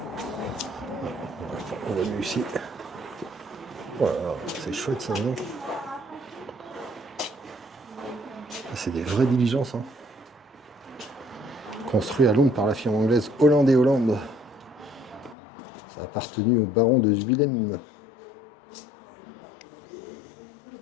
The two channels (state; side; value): drops out; right; at 15.4 s